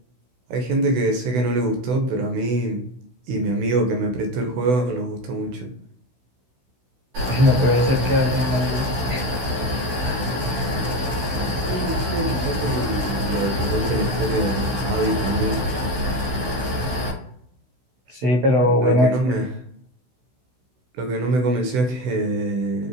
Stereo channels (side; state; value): left; late; 16 ms